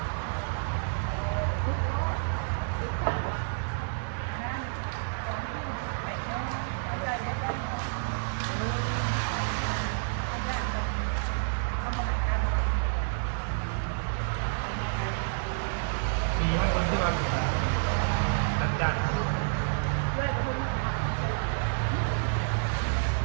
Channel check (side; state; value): left; silent; digital silence